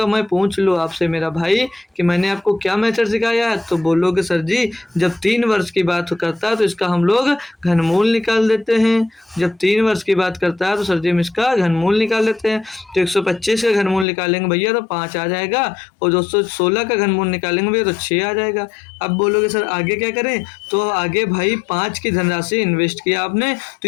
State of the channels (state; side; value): drops out; right; at 14.1 s